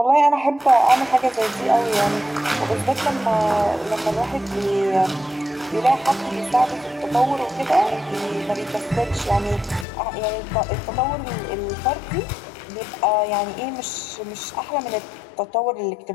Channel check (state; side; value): drops out; right; at 9.9 s